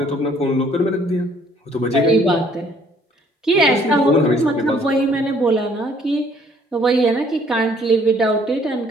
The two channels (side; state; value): both; normal; correlation 0.61